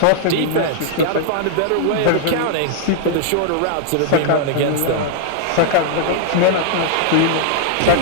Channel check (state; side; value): different; both; correlation -0.01